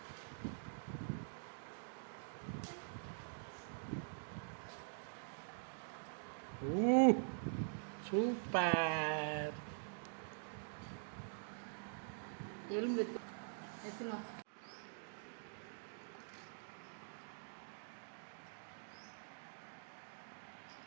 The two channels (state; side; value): silent; left; digital silence